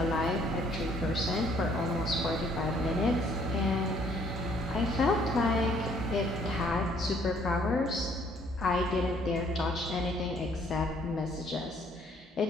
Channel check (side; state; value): both; normal; correlation 0.63